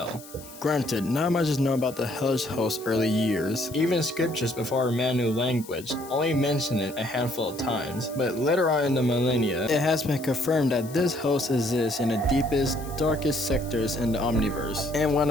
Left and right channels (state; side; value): noise; left; hiss, 18 dB below the sound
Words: Granted, not much is known about the hellish host's early years. Even scriptures before man knew language only mention it a handful of times, but later on in the millennia, it has been confirmed that this host exists in the deepest, darkest sectors in the omniverse. And one